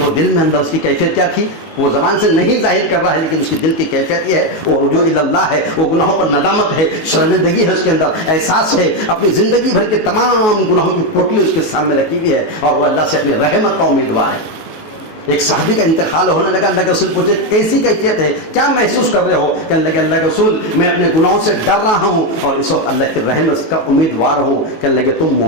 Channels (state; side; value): late; right; 19 ms